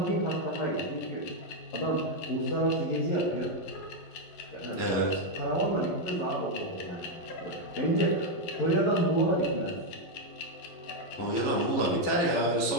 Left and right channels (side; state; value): right; late; 11 ms